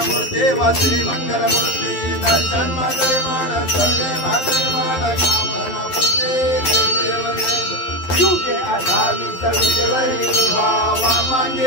मूर्ती व श्री मंगल मूर्ती दर्शन मात्रे मान करणे मात्रे मान कामना पुते जय देव युगे 28 विजेवरी उभा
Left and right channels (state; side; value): late; right; 11 ms